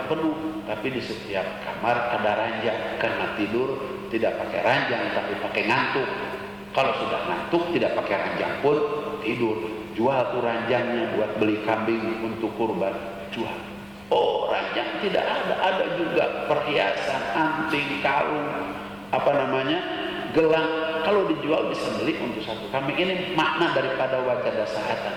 penuh tapi di setiap kamar ada ranjang, karena tidur tidak pakai ranjang tapi pakai ngantuk. Kalau sudah ngantuk tidak pakai ranjang pun tidur, jual tuh ranjangnya buat beli kambing untuk kurban, jual. Oh, ranjang tidak ada juga perhiasan, anting, kalung, gelang. Kalau dijual bisa beli untuk 1 kambing. Ini makna daripada wajada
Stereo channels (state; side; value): noise; left; rumble, 28 dB below the sound